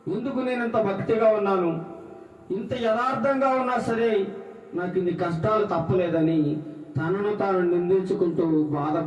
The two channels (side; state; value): both; identical; correlation 1.00